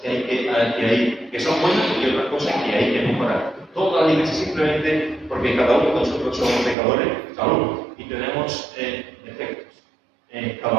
que son buenas y otras cosas que hay que mejorar. Todas las iglesias simplemente porque cada uno de nosotros somos pecadores, y tenemos defectos.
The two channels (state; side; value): drops out; left; at 6.8 s